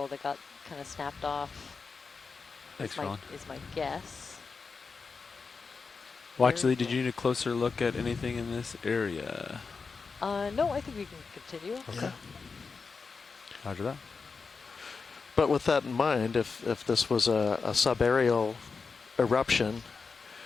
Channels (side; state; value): right; quieter; 4.8 dB